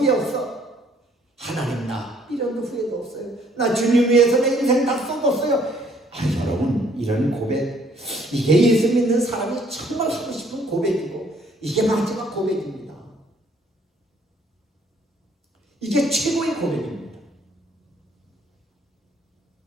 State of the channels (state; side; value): normal; both; correlation 0.62